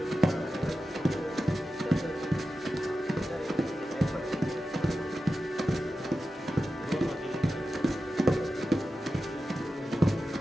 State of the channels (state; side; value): normal; both; correlation 0.92